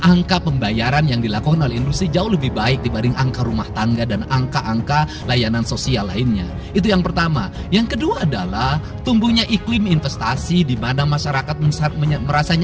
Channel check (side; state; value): both; identical; correlation 1.00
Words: angka pembayaran yang dilakukan oleh industri jauh lebih baik dibanding angka rumah tangga dan angka-angka layanan sosial lainnya. Itu yang pertama. Yang kedua adalah tumbuhnya iklim investasi di mana masyarakat merasa